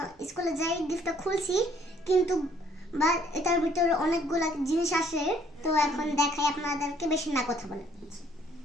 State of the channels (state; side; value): normal; both; correlation 0.62